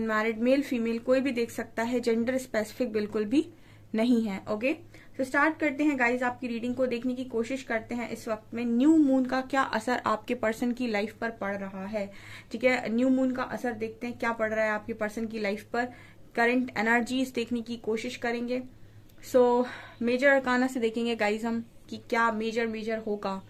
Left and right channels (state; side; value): identical; both; correlation 1.00